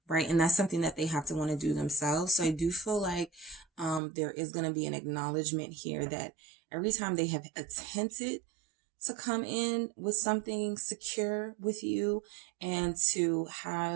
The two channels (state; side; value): drops out; left; at 4.0 s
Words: Right? And that's something that they have to want to do themselves. So I do feel like there is going to be an acknowledgement here that every time they have attempted to come in with something secure with you and to